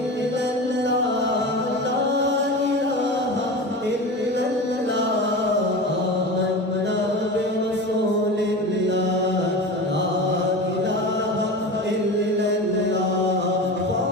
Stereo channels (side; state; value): both; normal; correlation 0.29